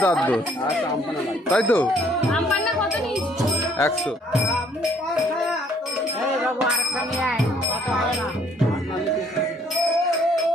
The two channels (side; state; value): both; normal; correlation 0.63